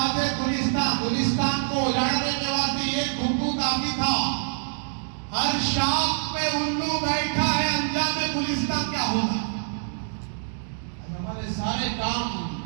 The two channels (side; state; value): left; silent; digital silence